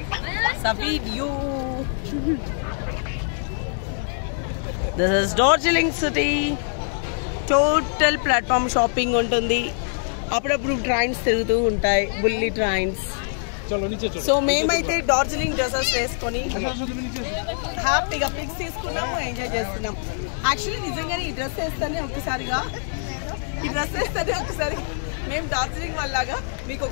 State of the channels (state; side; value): silent; right; 59 dB below the other